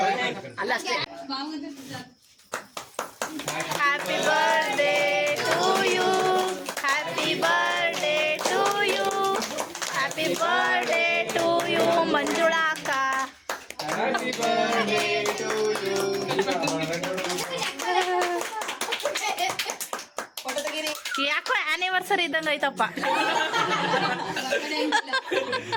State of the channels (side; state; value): both; identical; correlation 1.00